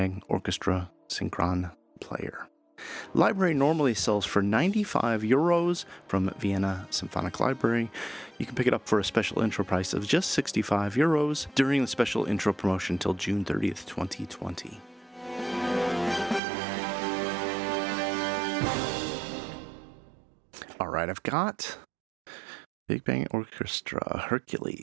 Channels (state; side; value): drops out; left; at 16.4 s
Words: Orchestra Synchron player. Library normally sells for €95 from Vienna Symphonic Library. You can pick it up for a special intro price of just €65 during the special intro promotion until June 30th, 2020. All right, I've got Big Bang Orchestra